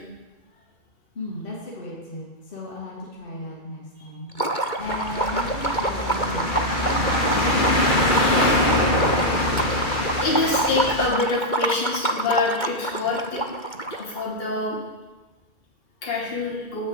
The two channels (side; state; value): right; late; 2.4 ms